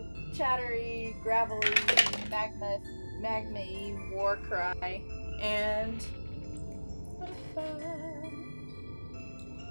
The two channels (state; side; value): inverted; both; correlation -1.00